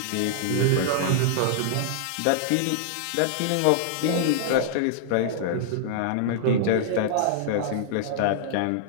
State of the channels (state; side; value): different; both; correlation -0.01